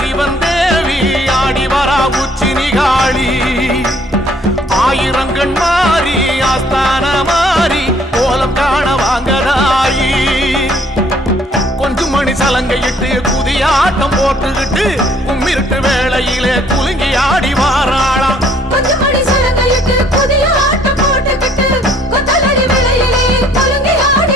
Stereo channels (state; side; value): normal; both; correlation 0.61